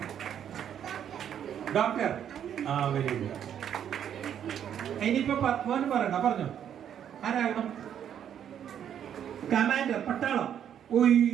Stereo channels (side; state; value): left; quieter; 9.3 dB